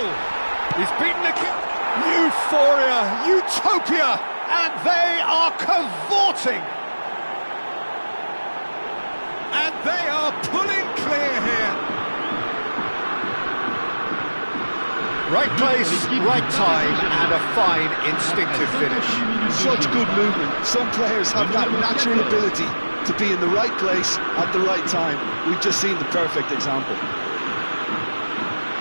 He's beaten the kick. Euphoria, utopia! And they are cavorting. And they are pulling clear here. Right place, right time, and a fine instinctive finish. Such good movement. Some players have that natural ability to be in the right place at the right time. We've just seen the perfect example.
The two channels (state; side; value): inverted; both; correlation -1.00